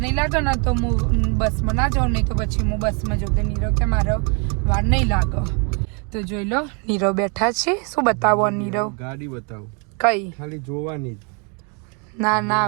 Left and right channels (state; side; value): quieter; left; 35.8 dB